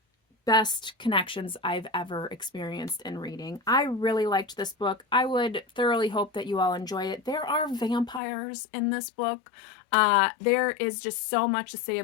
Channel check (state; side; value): drops out; right; at 8.2 s